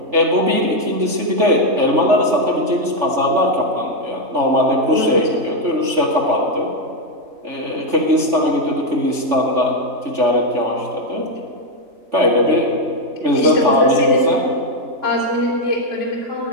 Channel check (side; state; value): left; late; 3.4 ms